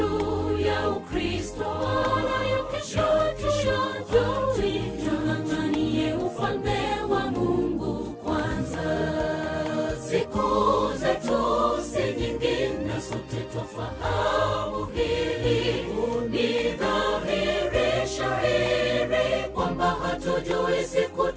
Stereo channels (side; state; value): both; identical; correlation 1.00